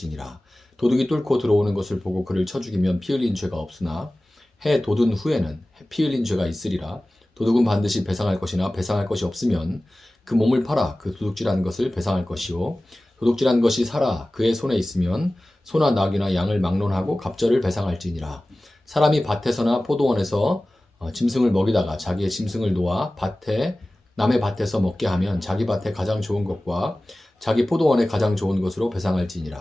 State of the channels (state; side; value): normal; both; correlation 0.97